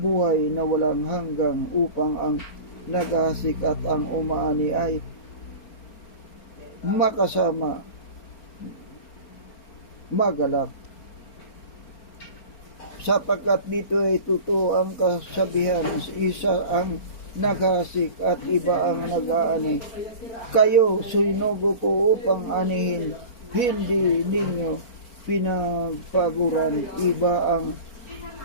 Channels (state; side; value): late; right; 4.4 ms